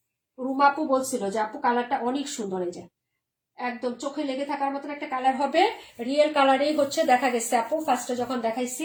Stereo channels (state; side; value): identical; both; correlation 1.00